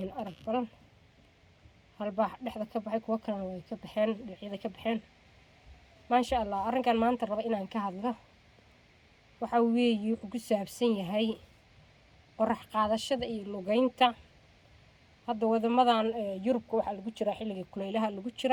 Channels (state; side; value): identical; both; correlation 1.00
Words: arag badan hal baax dhexda ka baxay kuwa kalena way ka baxeen dhinacyada ka baxeen maasha Allah. Arrinkan maanta raba inaan ka hadlo waxa weeye wuxuu ku saabsan yahay qorax qaadashada iyo lugaynta. Hadda wadamadan Yurubka waxa lagu jira xilliga kulaylaha lagu